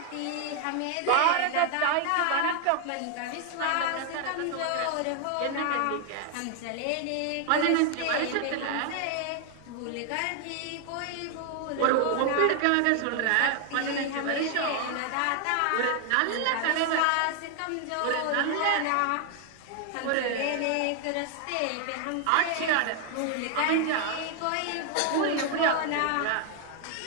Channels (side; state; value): both; different; correlation 0.00